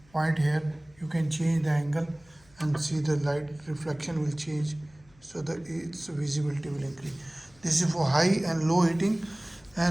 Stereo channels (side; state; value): left; noise; hum, 29 dB below the sound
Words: point here. You can change the angle and see the light reflection will change, so that its visibility will increase. This is for high and low heating,